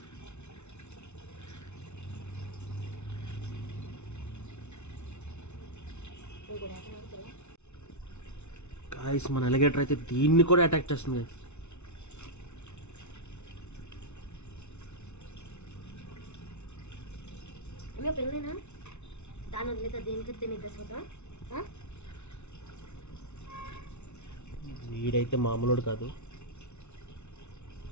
గాయస్ మన ఎలిగేటర్ అయితే దీన్ని కూడా అటాక్ చేస్తుంది గాయస్. పెళ్ళైనా దాని వదిలేత దేనికి తినిద్దాం. వీడైతే మామూలుడు కాదు.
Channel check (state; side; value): late; right; 0.82 ms